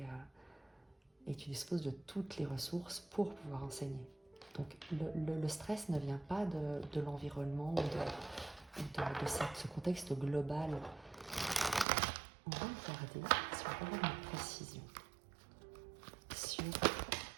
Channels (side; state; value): left; drops out; at 11.9 s